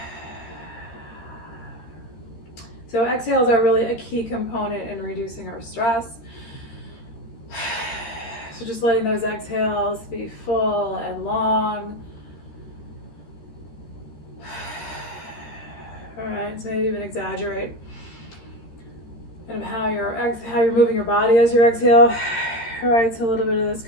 So exhales are really a key component in reducing our stress. So just letting those exhales be full and long. All right, so maybe even exaggerate kind of how you're moving your body as you exhale. All right, so a little bit of this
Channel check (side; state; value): right; late; 13 ms